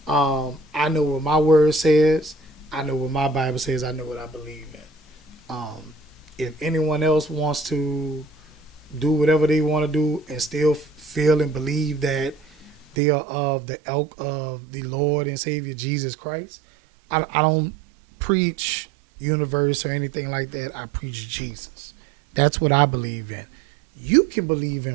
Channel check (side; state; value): left; drops out; at 13.0 s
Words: I know what my word says. I know what my Bible says. I know what I believe in. If anyone else wants to do whatever they want to do and still feel and believe that they are of the ilk of the Lord and Savior Jesus Christ, I don't preach universe or anything like that. I preach Jesus. That's what I believe in. You can believe